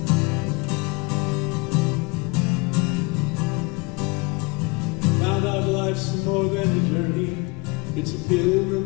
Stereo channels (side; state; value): right; quieter; 27.3 dB